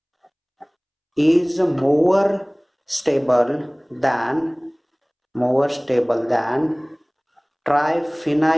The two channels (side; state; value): both; identical; correlation 1.00